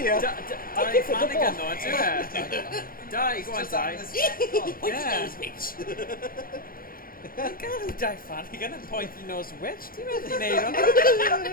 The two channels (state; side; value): late; right; 0.42 ms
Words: Die Flanagan, though, do it. Die, go on, Die. Yeah. Die Flanagan and pointy nose witch. Do you really need on it?